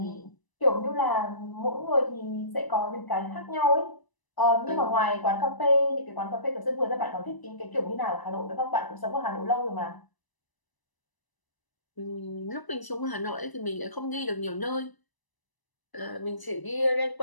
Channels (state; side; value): late; right; 1.0 ms